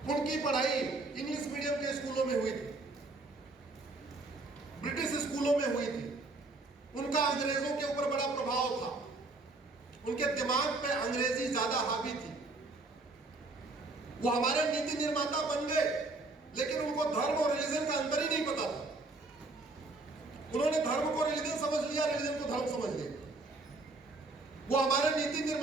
उनकी पढ़ाई इंग्लिश मीडियम के स्कूलों में हुई थी, ब्रिटिश स्कूलों में हुई थी, उनका अंग्रेजों के ऊपर बड़ा प्रभाव था, उनके दिमाग पे अंग्रेजी ज्यादा हावी थी। वो हमारे नीति निर्माता बन गए, लेकिन उनको धर्म और रिलीजन का अंतर ही नहीं पता था। उन्होंने धर्म को रिलीजन समझ लिया, रिलीजन को धर्म समझ लिया। वो हमारे नीति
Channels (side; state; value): left; quieter; 3.3 dB